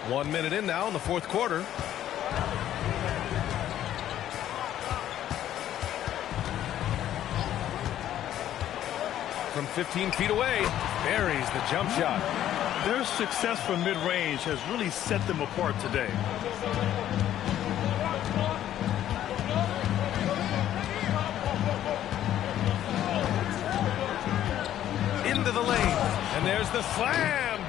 1 minute in now in the fourth quarter. From 15 feet away, buries the jump shot. Their success from mid-range has really set them apart today. Into the lane, and there's the slam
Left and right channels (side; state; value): right; quieter; 11.7 dB